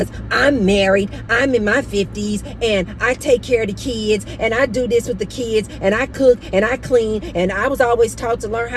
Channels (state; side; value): identical; both; correlation 1.00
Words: I'm married, I'm in my 50s, and I take care of the kids, and I do this with the kids, and I cook, and I clean, and I was always taught to learn